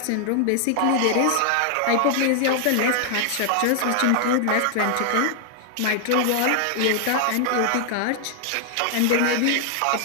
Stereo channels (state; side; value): different; both; correlation 0.00